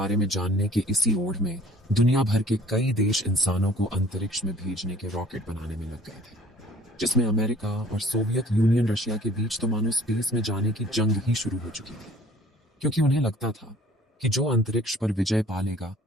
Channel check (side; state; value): both; normal; correlation 0.53